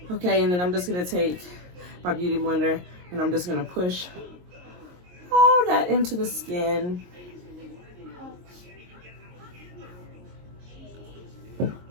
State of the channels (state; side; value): late; left; 22 ms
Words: Okay, and then I'm just gonna take my beauty blender and I'm just gonna push all that into the skin.